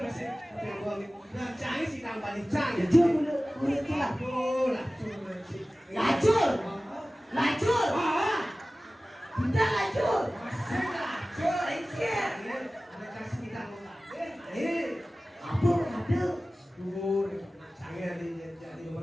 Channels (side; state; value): both; normal; correlation 0.97